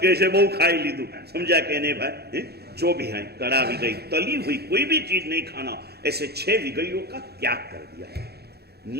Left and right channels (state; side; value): late; left; 0.47 ms